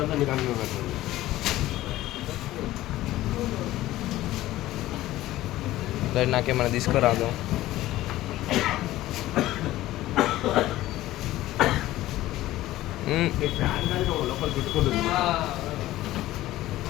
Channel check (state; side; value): quieter; right; 15.8 dB